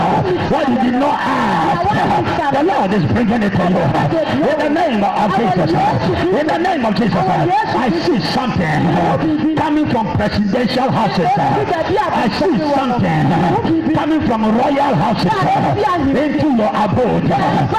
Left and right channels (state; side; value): identical; both; correlation 1.00